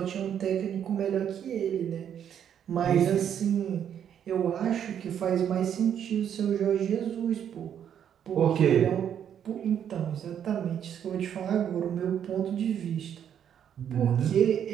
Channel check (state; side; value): quieter; left; 9.1 dB